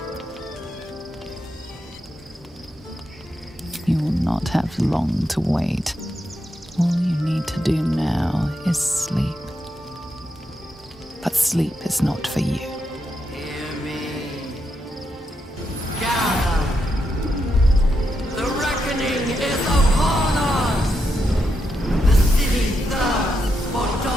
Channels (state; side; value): normal; both; correlation 0.83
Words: You will not have long to wait. All you need to do now is sleep. But sleep is not for you.